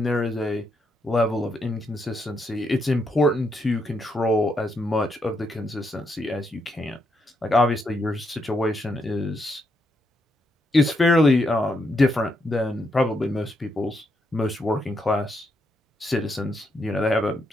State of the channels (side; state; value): both; normal; correlation 0.79